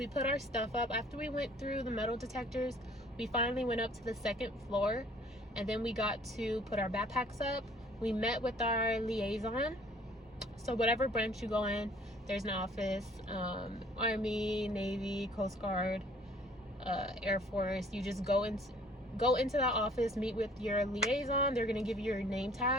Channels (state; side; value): normal; both; correlation 0.55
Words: put our stuff up. After we went through the metal detectors, we finally went up to the second floor, and then we got to put our backpacks up. We met with our liaison. So whatever branch you go in, there's an office, Army, Navy, Coast Guard, Air Force. You just go into that office, meet with your liaison. They're gonna give you your name